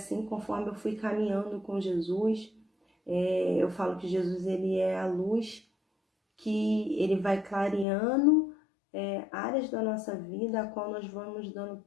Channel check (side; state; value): right; drops out; at 7.9 s